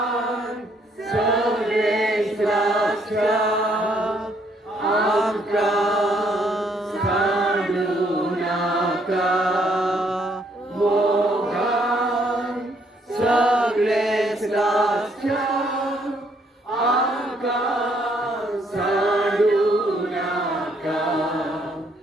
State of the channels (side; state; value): both; normal; correlation 0.69